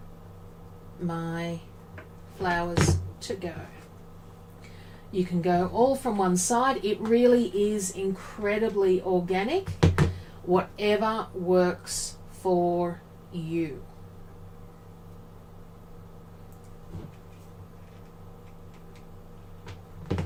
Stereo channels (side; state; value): both; identical; correlation 1.00